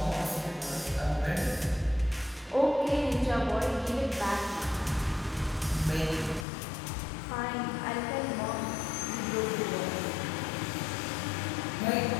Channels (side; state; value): right; drops out; at 6.5 s